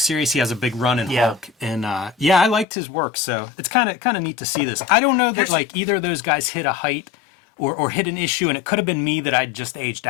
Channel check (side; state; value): right; drops out; at 2.7 s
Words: He has a big run in Hulk, and I liked his work. So it's kind of neat to see this. I don't know that like either of those guys hit a height or hit an issue, and it could have been me that I'd just aged